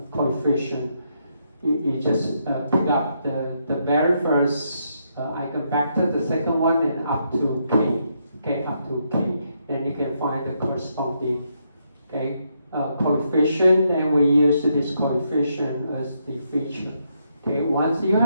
coefficient. You just pick up the very first eigenvector, the second one, and up to k. Okay, up to k. Then you can find the corresponding coefficient, and we use this coefficient as the feature. Okay, once you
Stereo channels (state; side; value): inverted; both; correlation -0.78